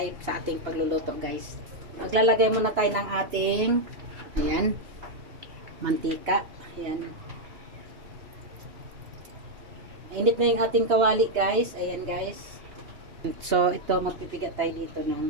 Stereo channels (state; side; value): late; left; 2.9 ms